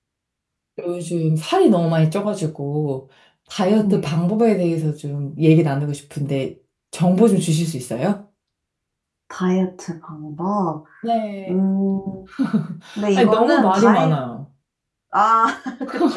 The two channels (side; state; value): both; identical; correlation 1.00